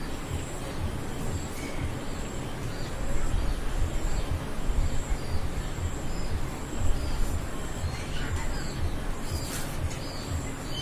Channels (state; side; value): identical; both; correlation 1.00